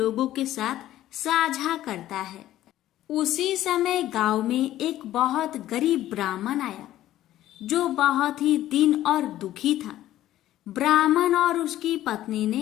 के साथ साझा करता है। उसी समय गांव में एक बहुत गरीब ब्राह्मण आया जो बहुत ही दीन और दुखी था। ब्राह्मण और उसकी पत्नी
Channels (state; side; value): quieter; right; 13.7 dB